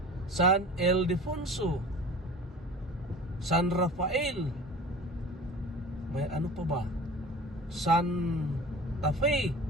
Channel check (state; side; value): normal; both; correlation 0.40